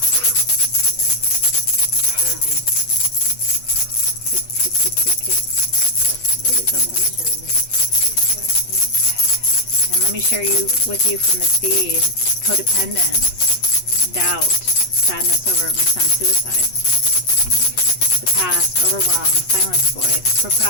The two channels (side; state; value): right; late; 8.2 ms